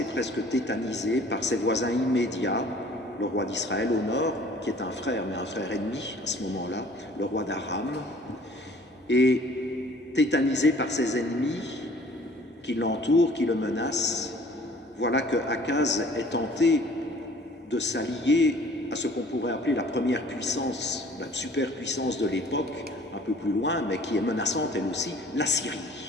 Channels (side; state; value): both; normal; correlation 0.52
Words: presque tétanisé par ses voisins immédiats, le roi d'Israël au nord, qui est un frère, mais un frère ennemi à ce moment-là, le roi d'Aram, et tétanisé par ses ennemis qui l'entourent, qui le menacent. Voilà que Akaz est tenté de s'allier à ce qu'on pourrait appeler la première puissance, la superpuissance de l'époque, un peu plus loin, mais qui est menaçante elle aussi, la Syrie.